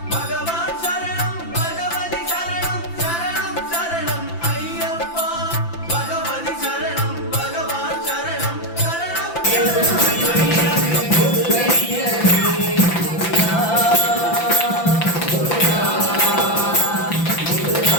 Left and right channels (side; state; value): right; late; 5.9 ms